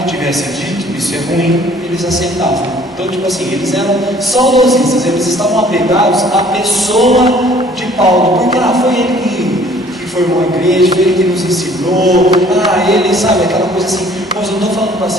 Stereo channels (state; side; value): normal; both; correlation 0.55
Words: que tivesse dito, isso é ruim, eles aceitavam. Então, tipo assim, eles eram saudosistas, eles estavam apegados à pessoa de Paulo, porque foi ele que formou a igreja, foi ele que nos ensinou, ele, sabe, aquela coisa assim. Mas eu não estou falando para